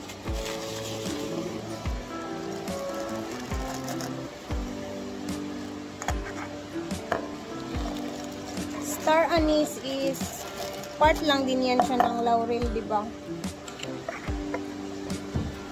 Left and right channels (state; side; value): identical; both; correlation 1.00